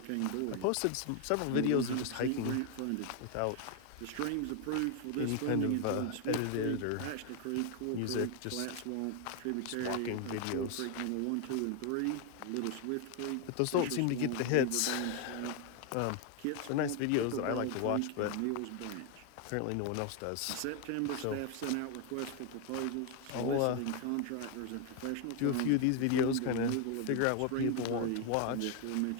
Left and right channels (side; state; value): both; different; correlation 0.01